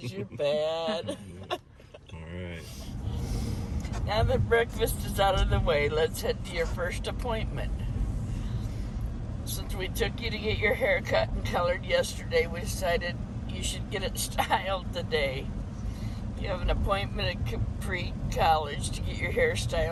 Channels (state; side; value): identical; both; correlation 1.00